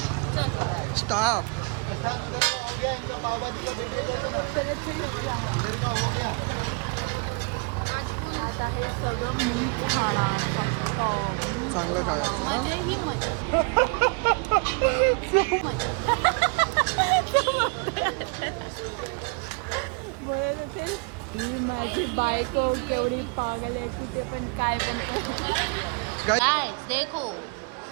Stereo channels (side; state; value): left; quieter; 33.9 dB